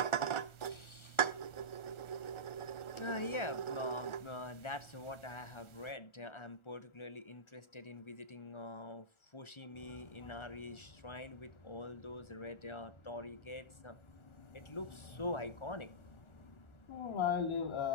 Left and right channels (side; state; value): right; late; 1.4 ms